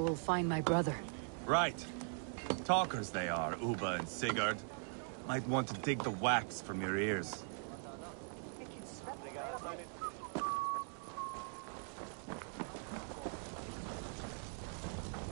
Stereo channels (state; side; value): silent; left; 50 dB below the other